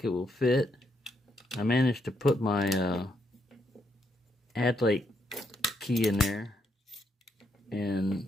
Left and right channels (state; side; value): normal; both; correlation 0.78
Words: it will fit, I managed to put my Adlake key in there,